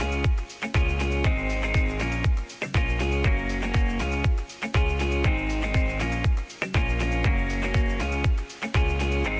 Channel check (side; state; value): both; identical; correlation 1.00